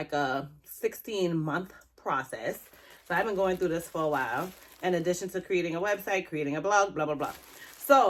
a 16-month process. So I've been going through this for a while, in addition to creating a website, creating a blog, blah, blah, blah.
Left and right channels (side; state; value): both; identical; correlation 1.00